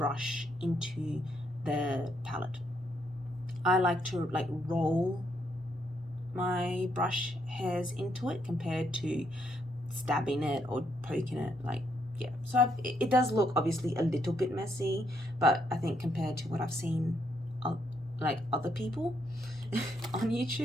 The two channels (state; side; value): normal; both; correlation 0.75